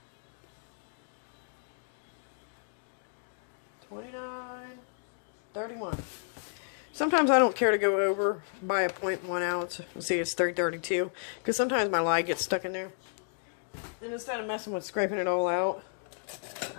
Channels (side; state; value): right; silent; digital silence